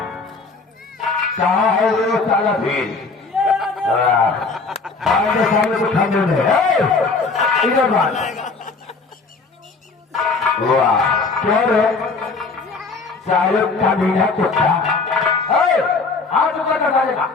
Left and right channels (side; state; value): right; quieter; 4.2 dB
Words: साले को खाने में इधर बात वाह क्या रे साले का मीना कुत्ता हाथ ऊपर कर डालेगा